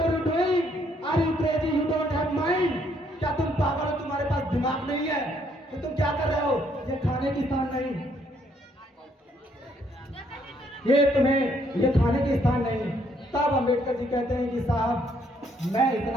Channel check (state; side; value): normal; both; correlation 0.69